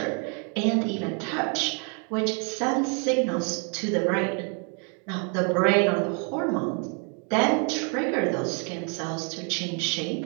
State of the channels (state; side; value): quieter; left; 37.8 dB